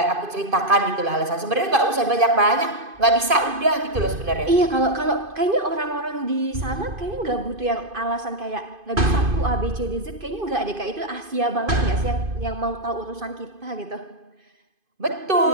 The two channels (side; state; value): left; late; 2.5 ms